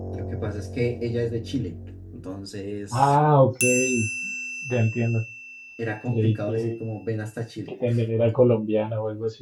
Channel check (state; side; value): identical; both; correlation 1.00